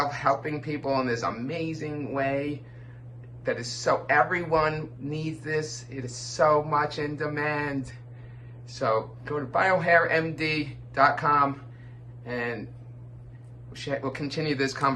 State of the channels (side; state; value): both; identical; correlation 1.00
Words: helping people in this amazing way that is so, everyone needs this. It is so much in demand. So go to biohairmd.com and we'll continue this